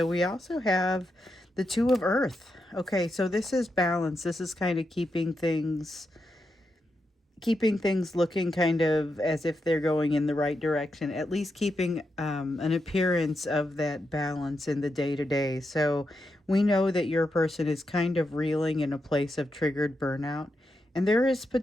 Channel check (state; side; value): normal; both; correlation 0.85